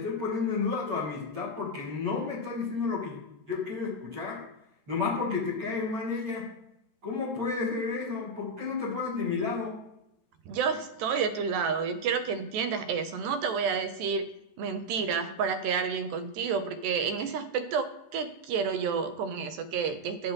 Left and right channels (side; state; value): left; late; 14 ms